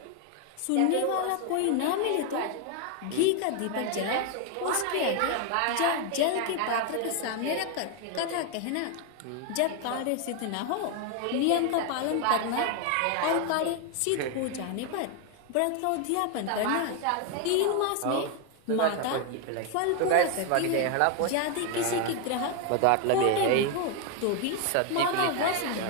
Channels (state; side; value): different; both; correlation 0.01